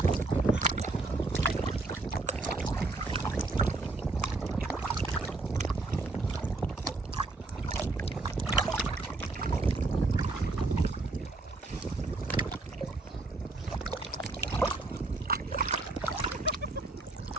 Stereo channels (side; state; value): left; quieter; 3.3 dB